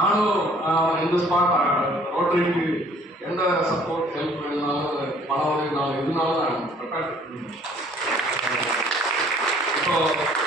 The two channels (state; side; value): normal; both; correlation 0.57